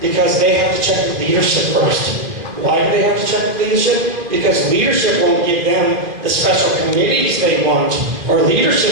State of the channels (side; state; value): left; late; 2.5 ms